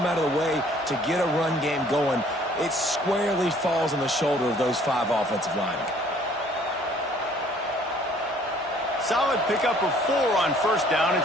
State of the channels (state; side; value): normal; both; correlation 0.58